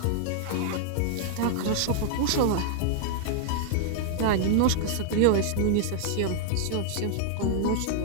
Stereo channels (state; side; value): different; both; correlation -0.01